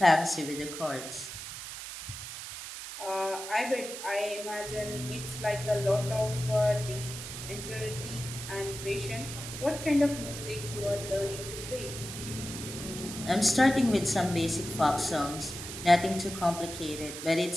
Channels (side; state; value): right; noise; hiss, 9 dB below the sound